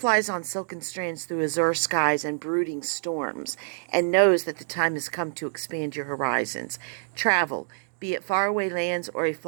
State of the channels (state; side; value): silent; left; digital silence